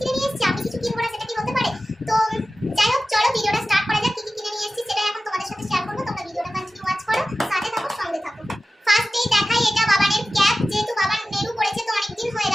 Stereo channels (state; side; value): normal; both; correlation 0.95